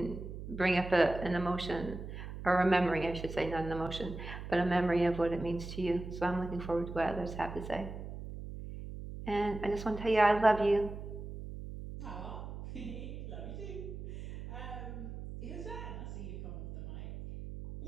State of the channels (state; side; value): noise; right; hum, 9 dB below the sound